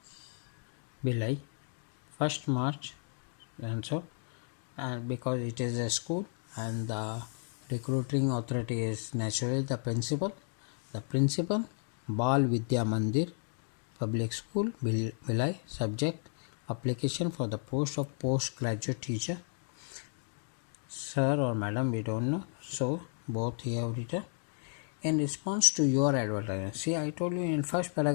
Bhilai, 1st March, and so, and because it is a school and the recruiting authority is naturally the principal. The principal, Bal Vidya Mandir Public School, Bhilai. Subject, application for the post of postgraduate teacher. Sir or madam, we don't know, so both here have written. In response to your advertisement, see, I told you in first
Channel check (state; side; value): silent; right; 56 dB below the other